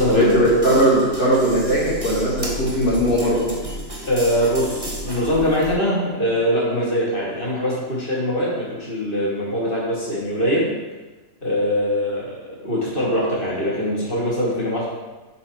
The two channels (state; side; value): late; right; 2.9 ms